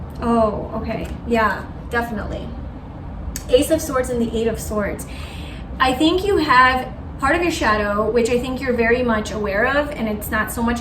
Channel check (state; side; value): identical; both; correlation 1.00